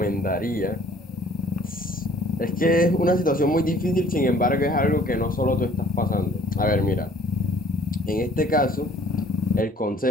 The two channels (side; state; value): both; normal; correlation 0.56